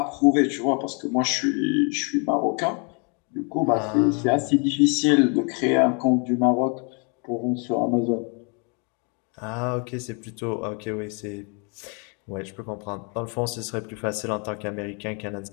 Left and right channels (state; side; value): quieter; right; 35.6 dB